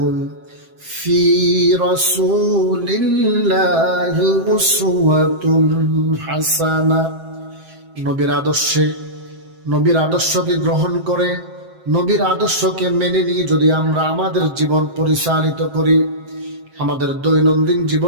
ফি রাসূলিল্লাহি উসওয়াতুন হাসানা, নবীর আদর্শকে গ্রহণ করে, নবীর আদর্শকে মেনে নিয়ে যদি আমরা আমাদের জীবন পরিচালিত করি, আমাদের দৈনন্দিন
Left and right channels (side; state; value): left; late; 7.7 ms